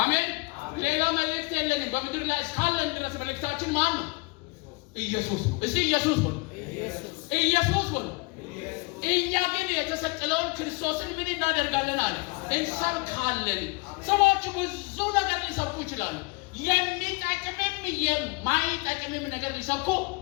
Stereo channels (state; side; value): quieter; right; 27.1 dB